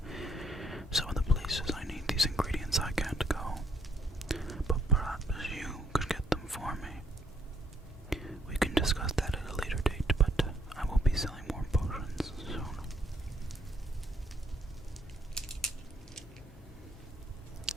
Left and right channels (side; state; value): both; normal; correlation 0.69